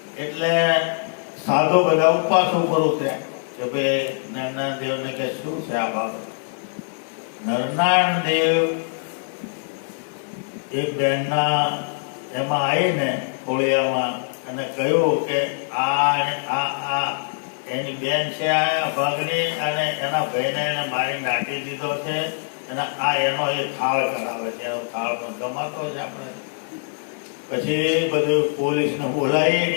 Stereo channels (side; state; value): right; silent; 63 dB below the other